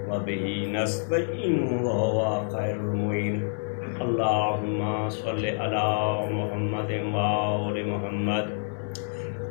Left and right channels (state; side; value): silent; right; 60 dB below the other